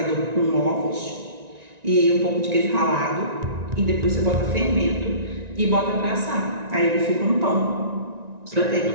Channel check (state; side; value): late; left; 1.9 ms